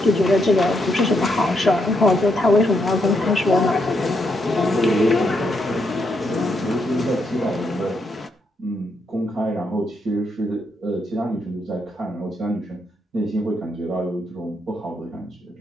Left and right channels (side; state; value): both; normal; correlation 0.78